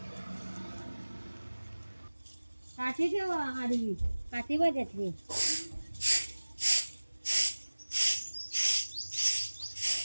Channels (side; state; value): both; inverted; correlation -1.00